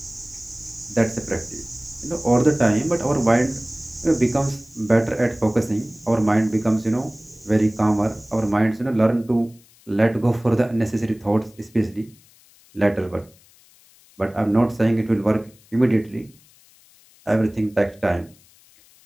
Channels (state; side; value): noise; left; hiss, 28 dB below the sound